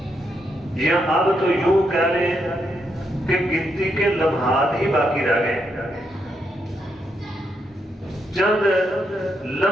یا اب تو یوں کہہ لیں کہ گنتی کے لمحات ہی باقی رہ گئے، چند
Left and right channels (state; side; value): normal; both; correlation 0.80